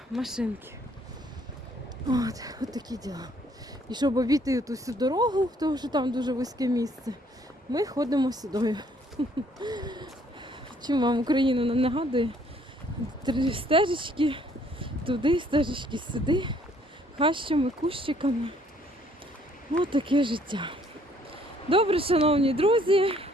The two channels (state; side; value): normal; both; correlation 0.63